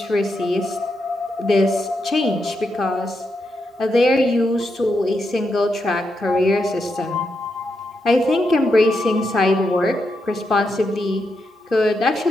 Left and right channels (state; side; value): normal; both; correlation 0.84